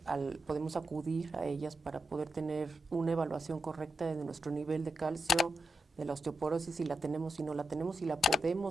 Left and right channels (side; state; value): both; normal; correlation 0.87